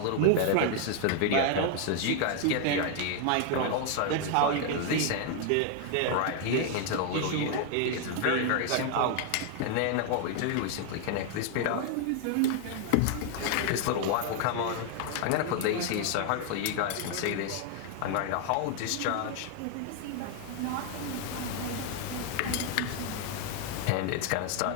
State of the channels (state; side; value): different; both; correlation 0.00